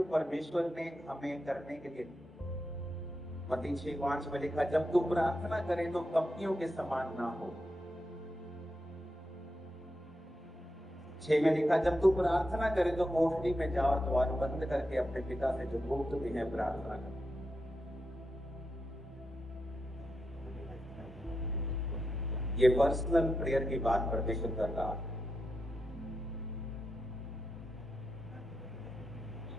परमेश्वर ने हमें करने के लिए मत्ती 6:5 में लिखा, जब तू प्रार्थना करे तो कपटियों के समान ना हो। 6 में लिखा, जब तू प्रार्थना करे तो कोठरी में जा और द्वार बंद करके अपने पिता से जो गुप्त में है प्रार्थना कर। ये पर्सनल प्रेयर की बात परमेश्वर कर रहा है।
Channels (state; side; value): normal; both; correlation 0.86